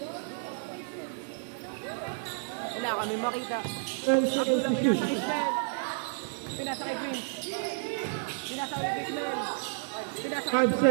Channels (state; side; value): silent; left; 56 dB below the other